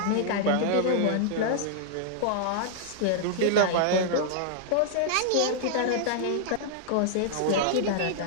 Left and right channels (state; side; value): different; both; correlation -0.01